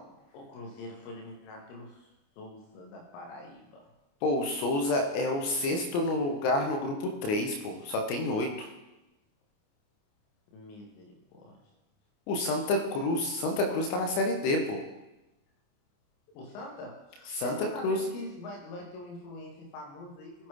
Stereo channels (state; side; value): late; right; 29 ms